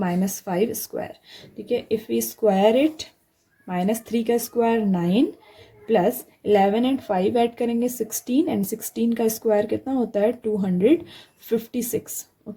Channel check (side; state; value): both; identical; correlation 1.00